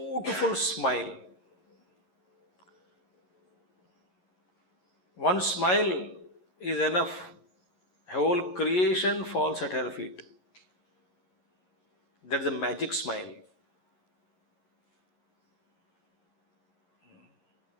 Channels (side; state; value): right; late; 11 ms